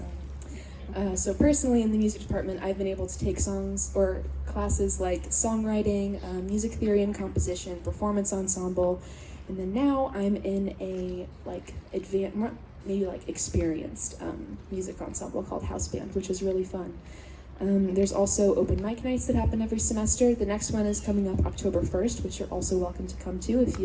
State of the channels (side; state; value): both; identical; correlation 1.00